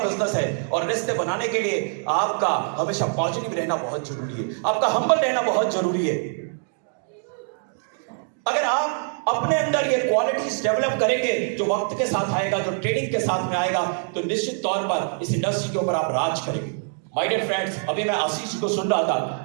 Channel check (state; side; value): silent; left; 58 dB below the other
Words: है। और रिश्ते बनाने के लिए आपका हमेशा पॉजिटिव रहना बहुत जरूरी है, आपका हम्बल रहना बहुत जरूरी है। अगर आप अपने अंदर ये क्वालिटीज डेवलप करेंगे, जो वक्त के साथ आएगा, जो ट्रेनिंग के साथ में आएगा, तो निश्चित तौर पर इस इंडस्ट्री के ऊपर आप राज करेंगे। माय डियर फ्रेंड्स, अभी मैं आशीष को सुन रहा